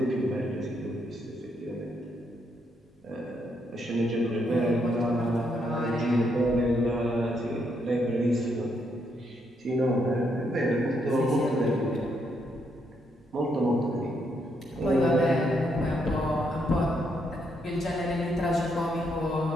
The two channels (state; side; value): normal; both; correlation 0.76